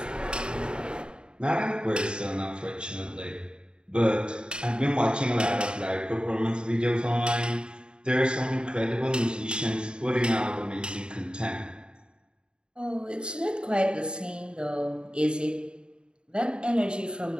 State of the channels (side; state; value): left; late; 0.050 ms